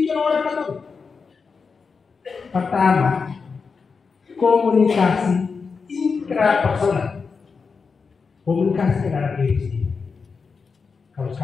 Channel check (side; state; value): right; quieter; 5.1 dB